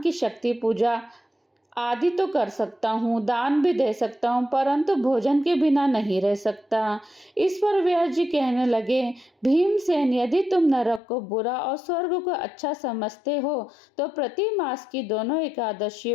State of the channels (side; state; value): right; drops out; at 11.0 s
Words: शक्ति पूजा आदि तो कर सकता हूँ, दान भी दे सकता हूँ, परंतु भोजन के बिना नहीं रह सकता। इस पर व्यास जी कहने लगे, भीमसेन, यदि तुम नरक को बुरा और स्वर्ग को अच्छा समझते हो तो प्रति मास की दोनों